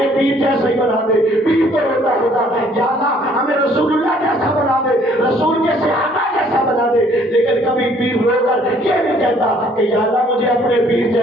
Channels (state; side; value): normal; both; correlation 0.60